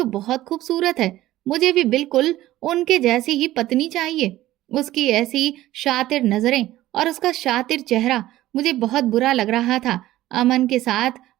बहुत खूबसूरत है, मुझे भी बिल्कुल उनके जैसी ही पत्नी चाहिए। उसकी ऐसी शातिर नजरें और उसका शातिर चेहरा, मुझे बहुत बुरा लग रहा था। अमन के साथ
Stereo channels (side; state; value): left; quieter; 15.3 dB